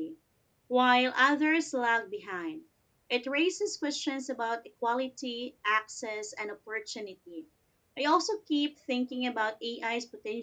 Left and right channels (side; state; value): both; identical; correlation 1.00